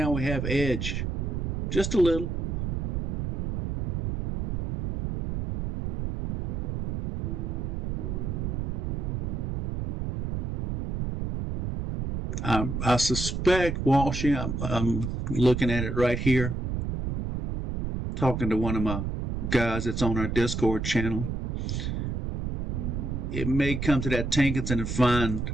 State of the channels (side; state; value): right; noise; rumble, 2 dB below the sound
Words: we have edge just a little. I suspect, Walshy, I'm looking at it right here, talking to one of my guys that's on our Discord channel. It may come to that Tankinson and find